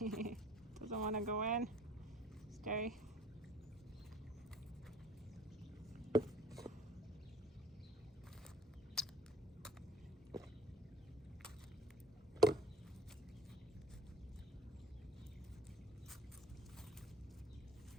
Doesn't want to go in. Stay.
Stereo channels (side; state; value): both; normal; correlation 0.50